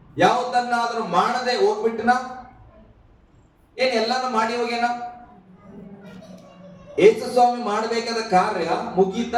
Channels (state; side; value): identical; both; correlation 1.00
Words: ಯಾವುದನ್ನಾದ್ರೂ ಮಾಡದೆ ಹೋಗ್ಬಿಟ್ಟನ? ಏನ್ ಎಲ್ಲಾನು ಮಾಡಿ ಹೋಗ್ಯಾನ? ಯೇಸು ಸ್ವಾಮಿ ಮಾಡಬೇಕಾದ ಕಾರ್ಯ